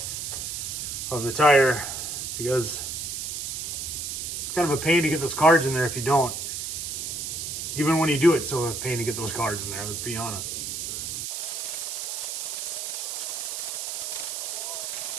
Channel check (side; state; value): right; noise; hiss, 4 dB below the sound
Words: of the tire, because it's kind of a pain to get those cards in there if you don't. Even when you do it, it's still a pain to get those cards in there, let's be honest.